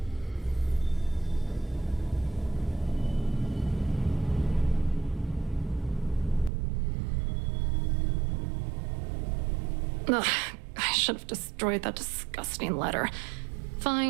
Ugh, I should have destroyed that disgusting letter.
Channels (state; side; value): drops out; left; at 6.5 s